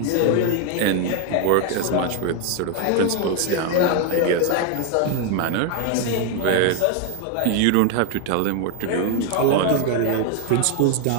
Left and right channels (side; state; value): both; different; correlation 0.01